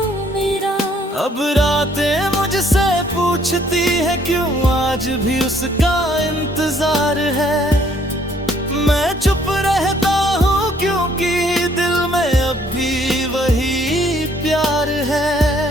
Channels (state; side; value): normal; both; correlation 0.64